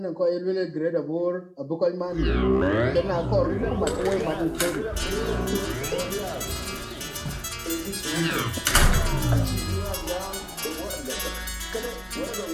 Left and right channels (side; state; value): both; identical; correlation 1.00